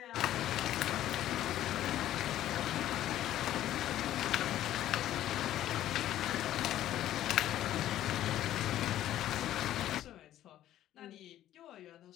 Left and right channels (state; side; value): quieter; right; 12.8 dB